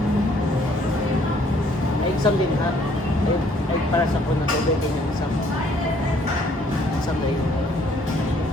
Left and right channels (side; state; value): both; normal; correlation 0.63